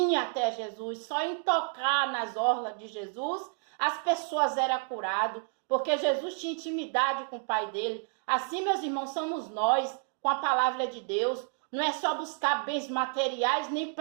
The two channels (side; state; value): left; silent; 58 dB below the other